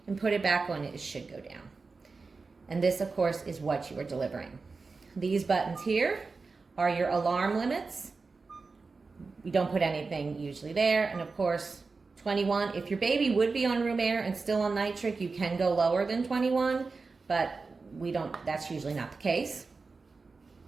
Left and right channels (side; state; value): left; quieter; 4.2 dB